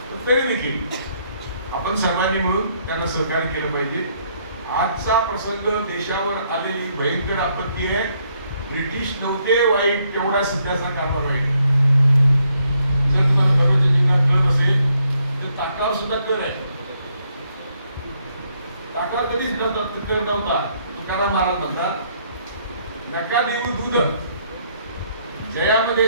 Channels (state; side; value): inverted; both; correlation -0.72